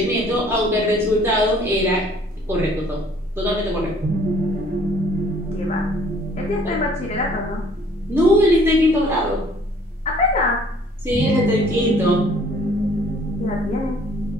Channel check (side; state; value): both; normal; correlation 0.57